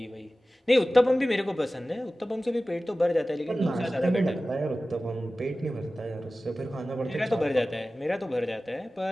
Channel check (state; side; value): normal; both; correlation 0.96